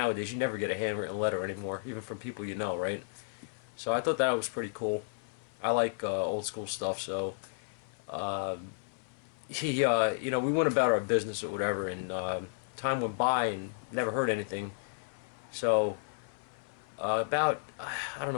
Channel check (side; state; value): right; silent; 56 dB below the other